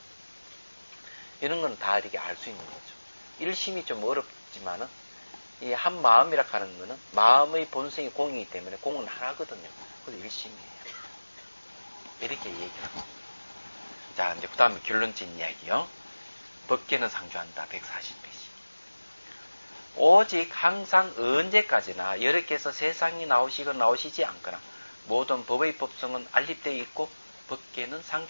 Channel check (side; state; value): both; inverted; correlation -1.00